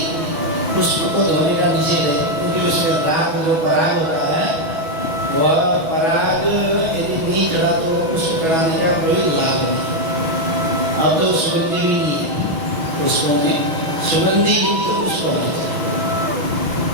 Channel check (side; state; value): left; late; 6.2 ms